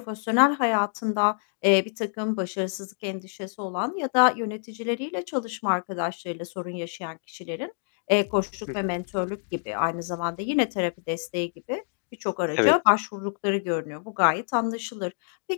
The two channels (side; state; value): right; silent; digital silence